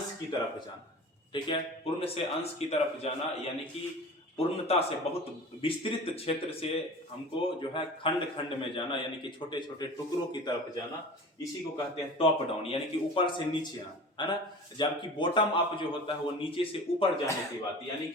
की तरफ जाना। ठीक है, पूर्ण से अंश की तरफ जाना, यानी कि पूर्णता से बहुत विस्तृत क्षेत्र से हमको जो है खंड खंड में जाना, यानी कि छोटे छोटे टुकड़ों की तरफ जाना, इसी को कहते हैं टॉप डाउन, यानी कि ऊपर से नीचे आना, है ना। जबकि बॉटम अप जो होता है वो नीचे से ऊपर जाने की बात, यानी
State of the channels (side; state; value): both; normal; correlation 0.38